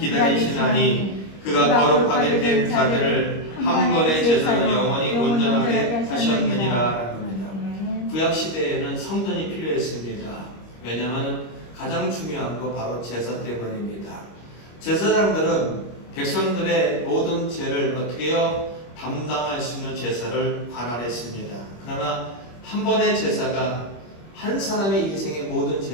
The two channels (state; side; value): late; right; 25 ms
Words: 기다리시나니 그가 거룩하게 된 자들을 한 번의 제사로 영원히 온전하게 하셨느니라. 구약시대에는 성전이 필요했습니다. 왜냐하면 가장 중요한 거 바로 제사 때문입니다. 제사장들은 백성들의 모든 죄를 어떻게 해요? 담당할 수 있는 제사를 관할했습니다. 그러나 한 번의 제사가 한 사람의 인생의 모든